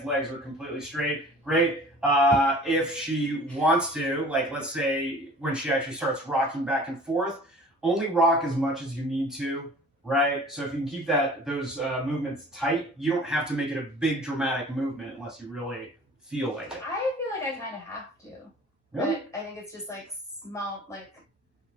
legs are completely straight. Great. If she wants to, like let's say when she actually starts rocking back and forth, only rock as much as you need to, right? So if you can keep those movements tight, you don't have to make it a big dramatic movement unless you really feel like it. I feel like I kind of have to. Really? But I think it's just like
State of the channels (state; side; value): normal; both; correlation 0.46